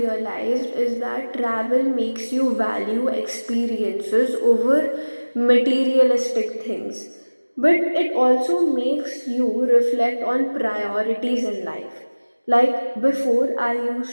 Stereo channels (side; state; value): both; inverted; correlation -1.00